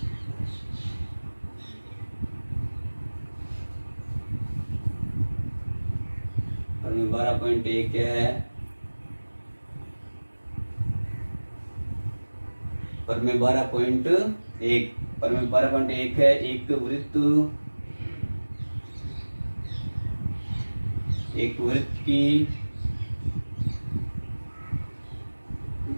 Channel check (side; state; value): both; inverted; correlation -1.00